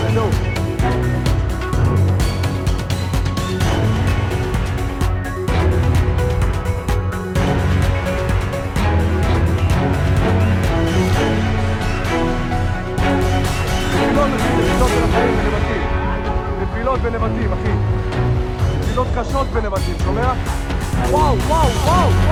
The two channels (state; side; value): identical; both; correlation 1.00